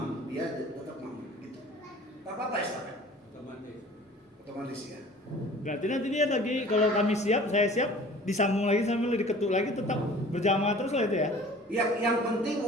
dia tetap makmum gitu. Tak apa-apa estafet, otomatis ya. Berarti nanti dia lagi, kalau kami siap, saya siap, disambung lagi sambil diketuk lagi, tetap berjamaah terus lah itu ya. Yang penting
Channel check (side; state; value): both; normal; correlation 0.46